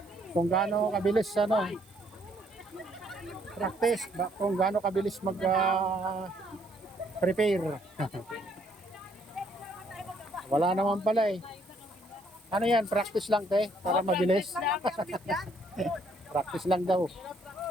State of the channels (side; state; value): right; noise; hiss, 28 dB below the sound